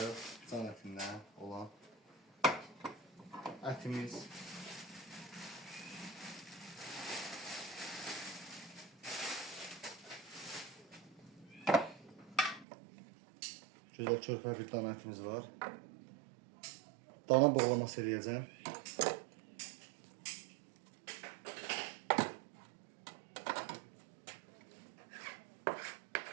can ətindən olan ətimiz gözəl körpə bir dana ətimiz var. Dana boğlaması eləyəcəm.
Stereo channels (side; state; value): left; drops out; at 12.7 s